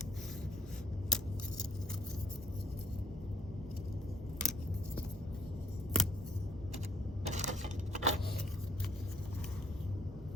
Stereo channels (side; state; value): both; normal; correlation 0.62